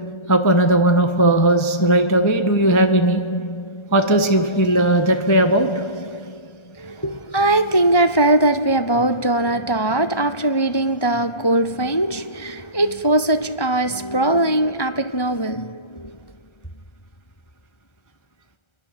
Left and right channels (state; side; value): late; right; 1.3 ms